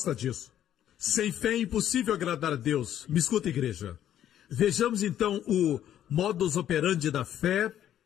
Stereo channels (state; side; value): quieter; right; 11.0 dB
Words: disso. Sem fé é impossível agradar a Deus. Me escuta, igreja. Vejamos então o modus operandi da fé.